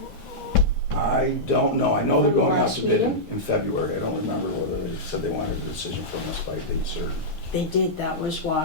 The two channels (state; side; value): normal; both; correlation -0.11